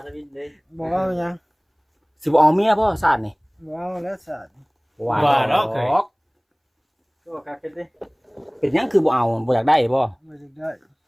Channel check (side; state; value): both; identical; correlation 1.00